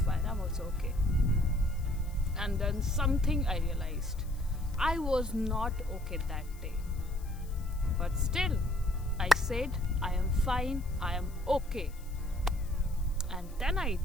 fine, I'm also okay. And then something I realized. I was not okay that day. But still, I said, I am fine, I am okay. And then I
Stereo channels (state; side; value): noise; left; hiss, 24 dB below the sound